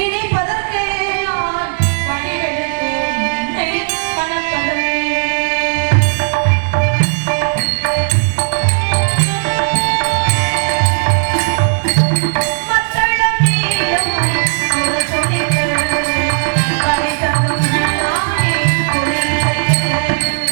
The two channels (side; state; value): left; silent; digital silence